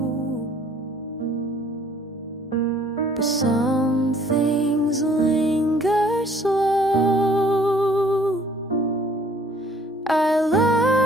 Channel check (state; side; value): normal; both; correlation 0.58